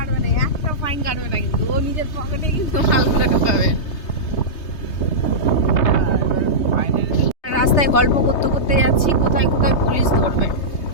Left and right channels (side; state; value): right; late; 3.3 ms